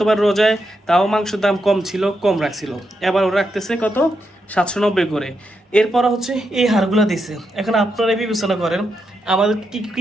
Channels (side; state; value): both; normal; correlation 0.84